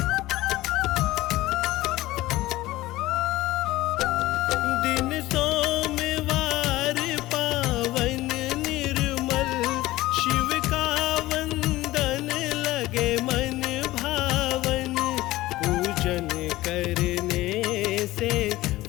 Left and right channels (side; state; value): right; quieter; 17.5 dB